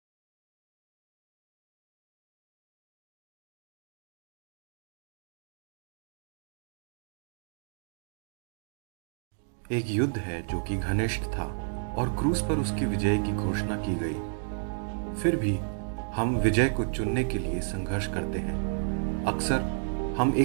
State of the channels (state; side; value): silent; left; digital silence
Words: एक युद्ध है जो कि घनिष्ठ था और क्रूस पर उसकी विजय की घोषणा की गई। फिर भी हम विजय को चुनने के लिए संघर्ष करते हैं। अक्सर हम